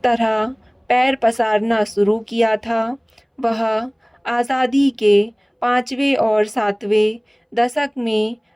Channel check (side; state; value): both; identical; correlation 1.00